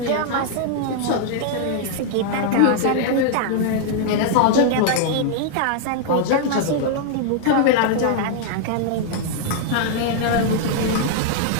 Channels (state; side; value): different; both; correlation 0.00